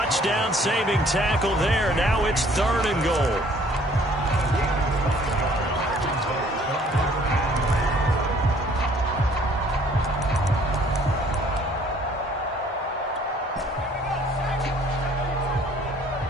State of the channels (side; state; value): both; normal; correlation 0.58